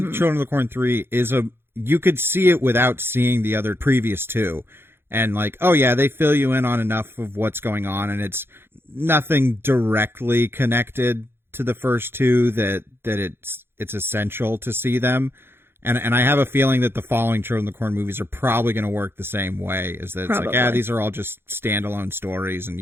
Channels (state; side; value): late; left; 0.11 ms